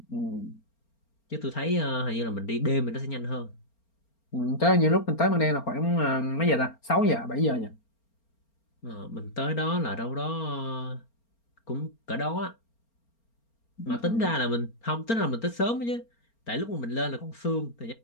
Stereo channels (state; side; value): late; right; 4.4 ms